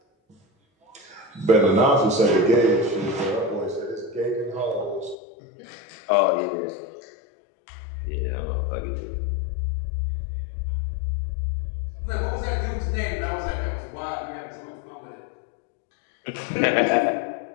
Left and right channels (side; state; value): right; drops out; at 5.2 s